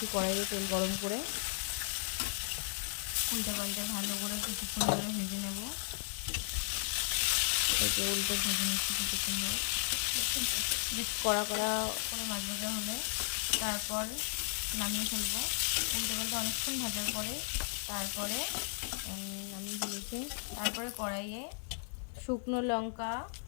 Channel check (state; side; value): silent; right; digital silence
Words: কড়াইয়ে তেল গরম করে। উল্টে পাল্টে ভালো করে কিছুক্ষণ ধরে ভেজে নেব। এই যে উল্টে ভেজে নিচ্ছি কিছুক্ষণ ধরে, বেশ কড়া কড়া করে মাছ ভাজা হলে তারপর নামিয়ে ফেলবো। উল্টে পাল্টে অনেকক্ষণ ভাজার পরে তারপরে নামিয়ে ফেলেছি। তারপরে কড়াইয়ে শুকনো লঙ্কা